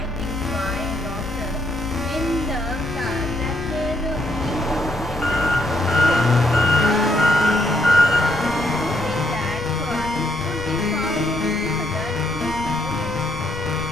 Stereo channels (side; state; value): left; noise; rumble, 12 dB below the sound